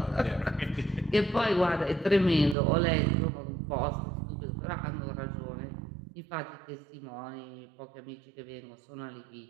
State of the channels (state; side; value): drops out; left; at 2.6 s